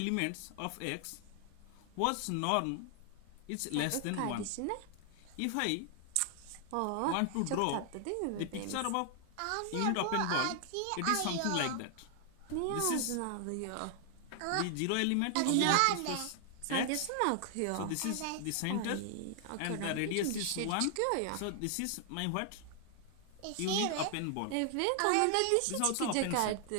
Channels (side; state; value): both; different; correlation 0.00